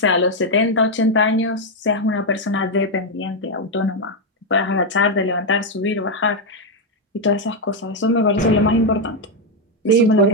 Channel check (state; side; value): normal; both; correlation 0.03